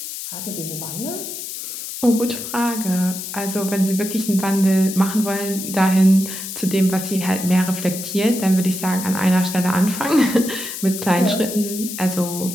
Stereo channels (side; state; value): left; noise; hiss, 8 dB below the sound